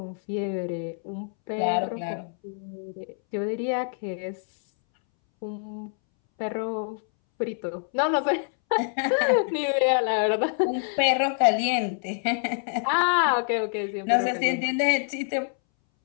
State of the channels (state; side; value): silent; right; 61 dB below the other